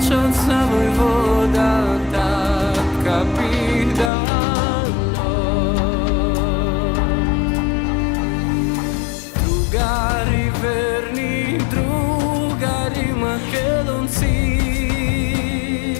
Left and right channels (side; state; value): right; drops out; at 4.1 s